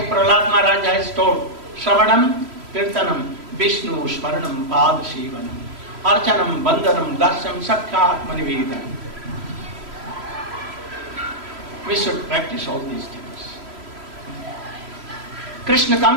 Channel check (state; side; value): late; left; 3.0 ms